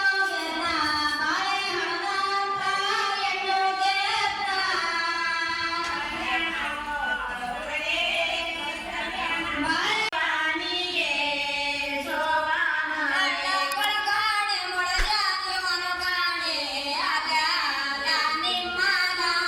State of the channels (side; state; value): both; identical; correlation 1.00